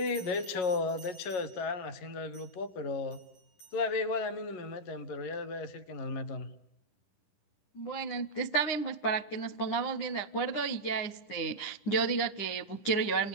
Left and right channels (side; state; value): right; late; 10 ms